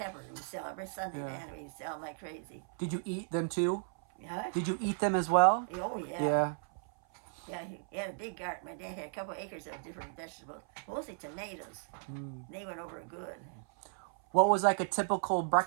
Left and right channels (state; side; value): silent; left; 54 dB below the other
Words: We sell every Sunday, Yeah. man. We sell them like crazy. Did you eat them too? Huh? Did you eat them as well? Oh yeah. Yeah. Yeah, he had a big garden. My dad had a couple acres of different vegetables, mostly tomatoes. Mm. They went over good. What was like a typical